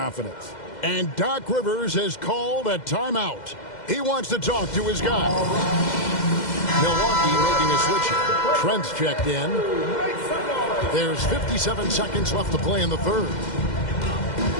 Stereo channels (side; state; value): right; late; 2.0 ms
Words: And Doc Rivers has called a timeout. He wants to talk to his guy. Milwaukee making a switch. Trent's checked in. There's 57 seconds left to play in the third.